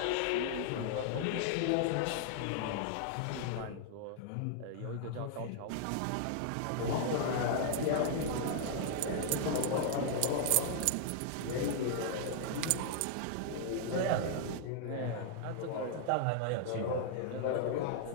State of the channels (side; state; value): both; different; correlation -0.01